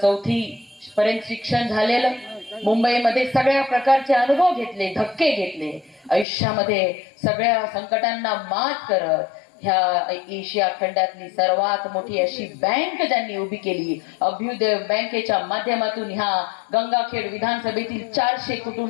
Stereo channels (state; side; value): drops out; right; at 6.2 s